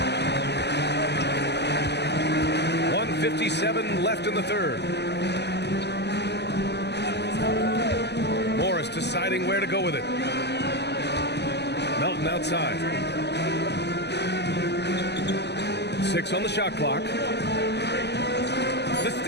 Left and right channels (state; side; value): late; right; 0.50 ms